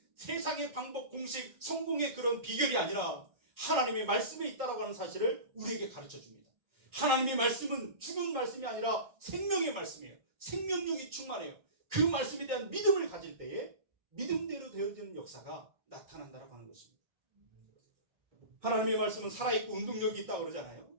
세상의 방법, 공식, 성공의 그런 비결이 아니라 하나님의 말씀에 있다라고 하는 사실을 우리에게 가르쳐줍니다. 하나님의 말씀은 죽은 말씀이 아니라 생명의 말씀이에요. 생명력이 충만해요. 그 말씀에 대한 믿음을 가질 때에 믿음대로 되어지는 역사가 나타난다라고 하는 것입니다. 하나님의 말씀은 살아있고 운동력이 있다고 그러잖아요.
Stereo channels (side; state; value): left; late; 1.3 ms